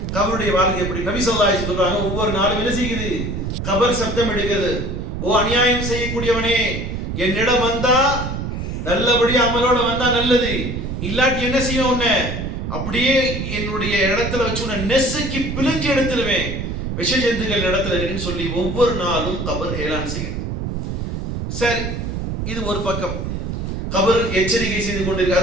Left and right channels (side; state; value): right; noise; rumble, 4 dB below the sound